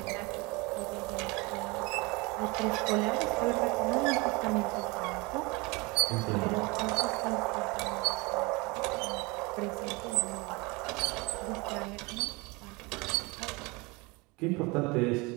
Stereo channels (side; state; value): left; quieter; 26.1 dB